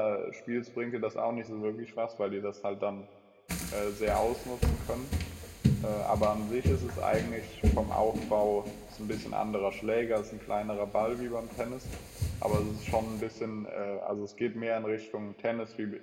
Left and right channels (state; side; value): identical; both; correlation 1.00